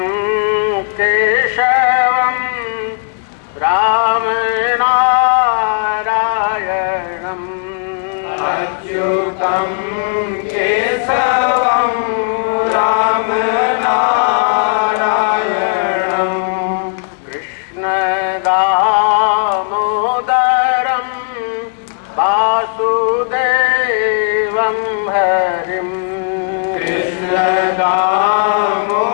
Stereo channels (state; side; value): silent; right; digital silence